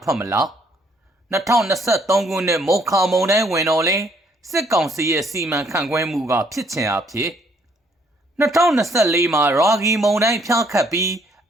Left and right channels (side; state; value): both; normal; correlation 0.66